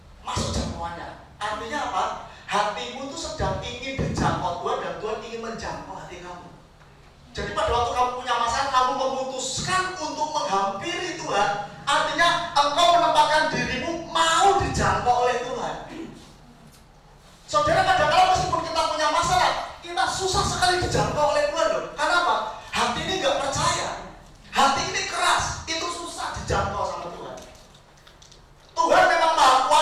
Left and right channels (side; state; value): both; identical; correlation 1.00